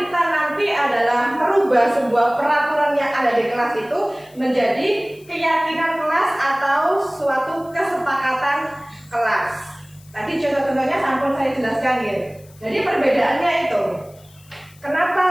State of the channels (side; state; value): left; noise; hiss, 27 dB below the sound